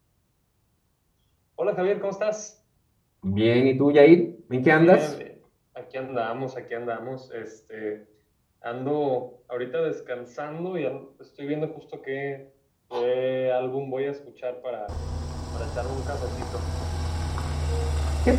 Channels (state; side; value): identical; both; correlation 1.00